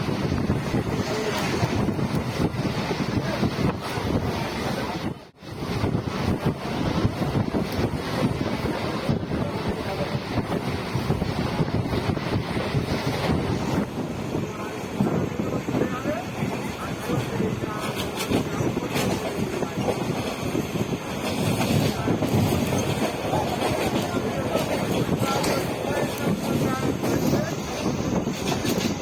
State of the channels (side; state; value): both; identical; correlation 1.00